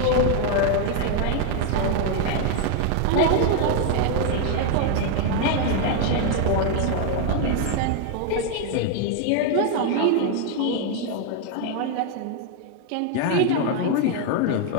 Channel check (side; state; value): both; different; correlation 0.00